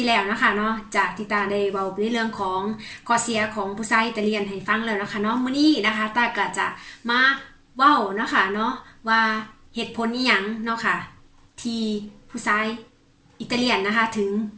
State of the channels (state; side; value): identical; both; correlation 1.00